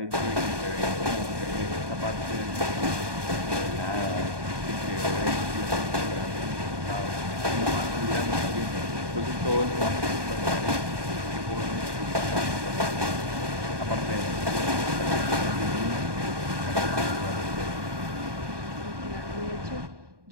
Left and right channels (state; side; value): late; left; 1.2 ms